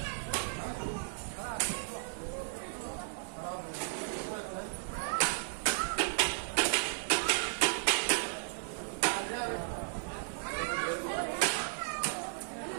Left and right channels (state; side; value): silent; left; digital silence